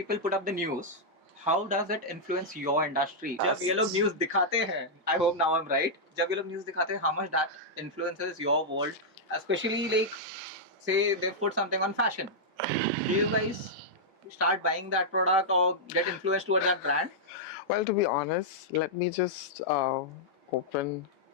put up the news, how does it influence your industry? जब ये लोग news दिखाते हैं, I hope now I'm right. जब ये लोग news दिखाते हैं, how much that influences your world, especially like say they put something on fashion. Do you guys start buying that product or get influenced towards that brand? Well, to be honest, let me just open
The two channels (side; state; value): both; normal; correlation -0.07